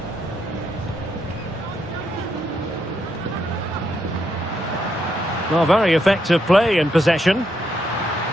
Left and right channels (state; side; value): normal; both; correlation 0.78